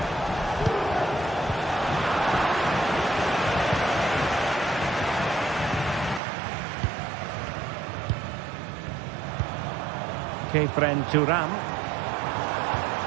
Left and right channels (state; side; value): drops out; left; at 6.2 s